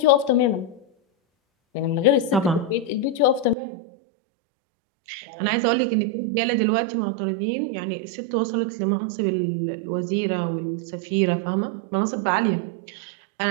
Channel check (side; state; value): left; drops out; at 3.6 s